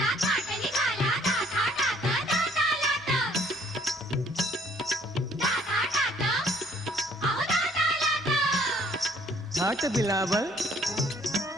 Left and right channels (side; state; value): both; normal; correlation 0.61